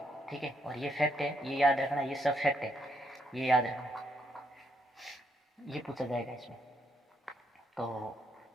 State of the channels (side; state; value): both; normal; correlation 0.75